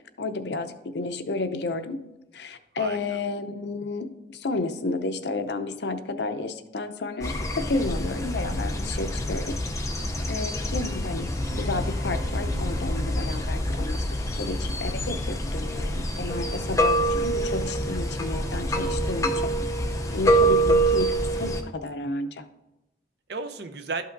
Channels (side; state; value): both; normal; correlation 0.42